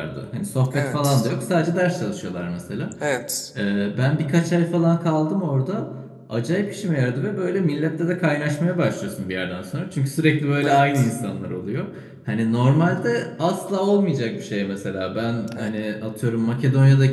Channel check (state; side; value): identical; both; correlation 1.00